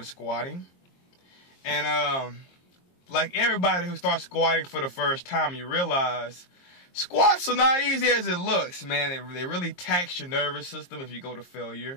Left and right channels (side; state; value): right; late; 22 ms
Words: squatting. And, like everybody who starts squatting for the first time, you realize squats are not easy as it looks, man. They really tax your nervous system if you go to